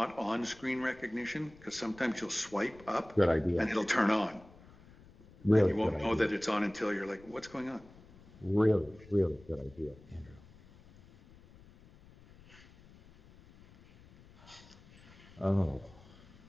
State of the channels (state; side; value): noise; left; rumble, 23 dB below the sound